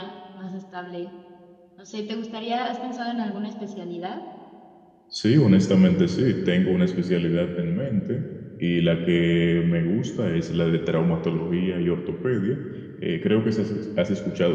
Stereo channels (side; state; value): both; identical; correlation 1.00